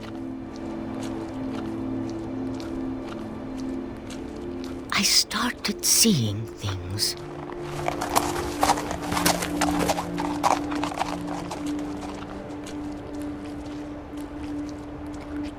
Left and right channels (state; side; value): identical; both; correlation 1.00